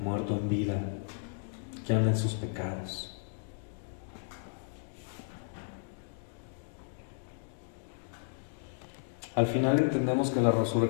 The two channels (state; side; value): silent; right; digital silence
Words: muerto en vida, que anda en sus pecados. Al final entendemos que la